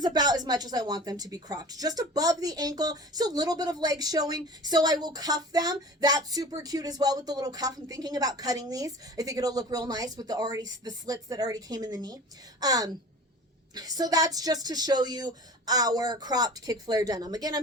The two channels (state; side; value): normal; both; correlation 0.38